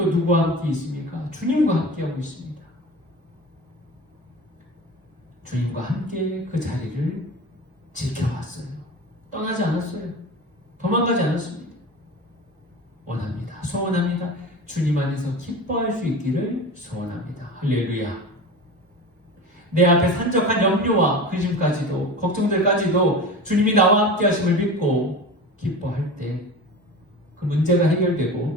누구와 함께 있습니까? 주님과 함께하고 있습니다. 주님과 함께 그 자리를 지켜왔어요. 떠나지 않았어요. 도망가지 않았습니다. 원합니다. 소원합니다. 주님 안에서 기뻐할 수 있기를 소원합니다. 할렐루야. 내 앞에 산적한 염려와 근심까지도, 걱정들까지도 주님이 나와 함께 하심을 믿고 기뻐할 때 그 문제가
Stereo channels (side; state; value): both; normal; correlation 0.32